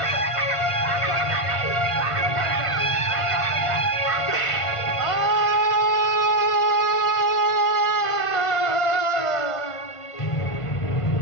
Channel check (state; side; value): late; right; 1.5 ms